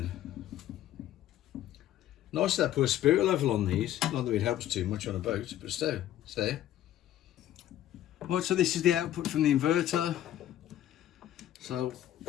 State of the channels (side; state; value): right; quieter; 12.6 dB